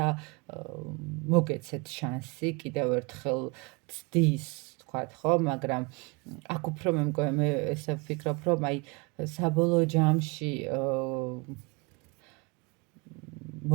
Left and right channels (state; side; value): quieter; left; 28.4 dB